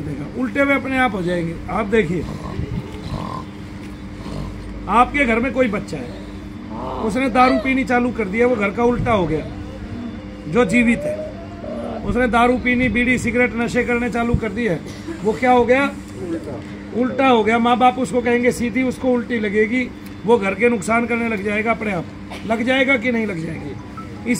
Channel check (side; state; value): both; identical; correlation 1.00